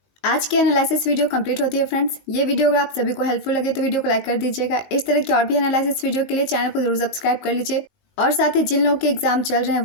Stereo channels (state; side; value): late; right; 19 ms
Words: आज की एनालिसिस वीडियो कंप्लीट होती है फ्रेंड्स। ये वीडियो अगर आप सभी को हेल्पफुल लगे तो वीडियो को लाइक कर दीजिएगा। इस तरह की और भी एनालिसिस वीडियो के लिए चैनल को जरूर सब्सक्राइब कर लीजिए और साथ ही जिन लोगों के एग्जाम चल रहे हैं